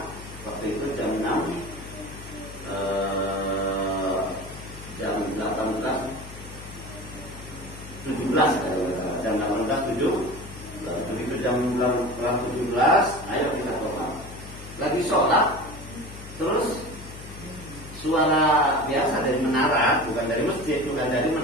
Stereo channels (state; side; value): noise; left; hum, 14 dB below the sound